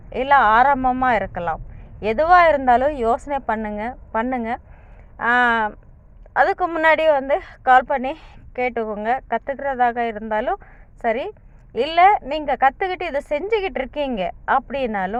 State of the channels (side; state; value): both; identical; correlation 1.00